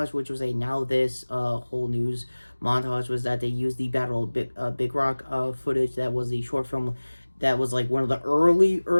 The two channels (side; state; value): both; inverted; correlation -1.00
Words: which was a now this whole news montage, was that they used the Battle of Big Rock footage. That was the short film that was like one of the